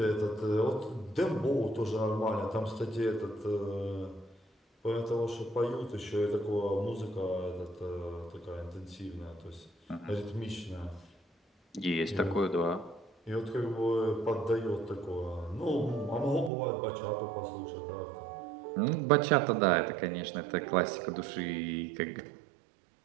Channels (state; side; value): drops out; left; at 16.5 s